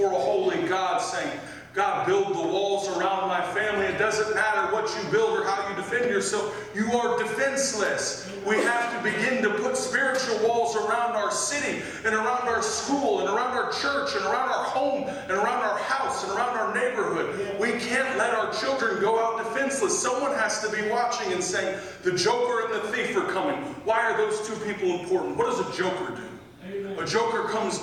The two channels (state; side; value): identical; both; correlation 1.00